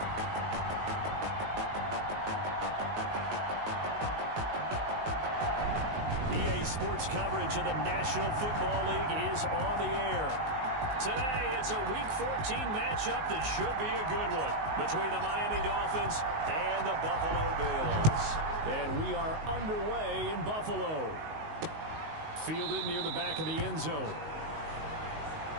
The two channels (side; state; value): left; late; 19 ms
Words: EA Sports coverage of the National Football League is on the air. Today, it's a Week 14 matchup that should be a good one between the Miami Dolphins and the Buffalo Bills. And we are underway in Buffalo. Fielded near the back of the end zone.